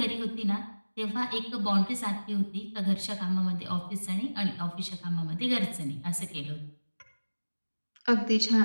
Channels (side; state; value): both; inverted; correlation -1.00